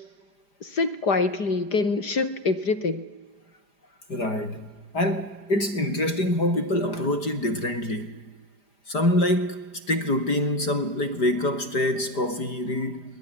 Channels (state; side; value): late; right; 5.0 ms